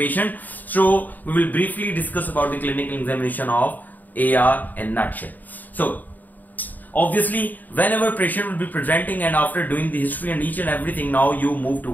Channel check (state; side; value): late; right; 0.084 ms